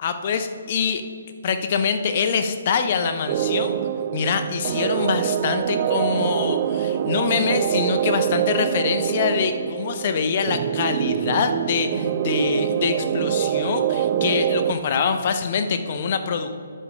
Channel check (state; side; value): inverted; both; correlation -0.52